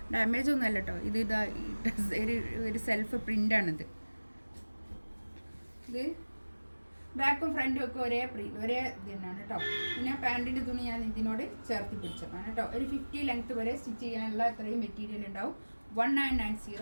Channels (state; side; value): inverted; both; correlation -1.00